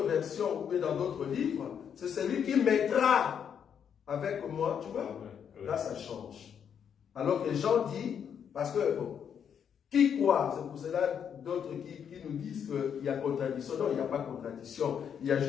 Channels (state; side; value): quieter; right; 8.0 dB